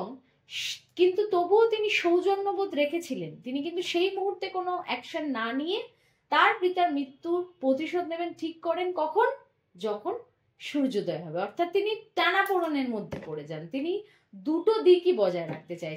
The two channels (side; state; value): both; identical; correlation 1.00